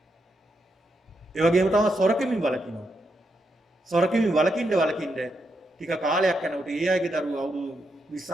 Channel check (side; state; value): both; normal; correlation 0.82